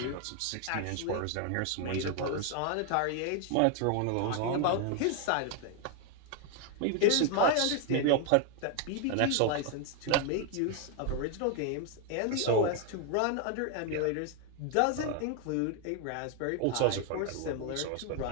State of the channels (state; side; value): different; both; correlation 0.00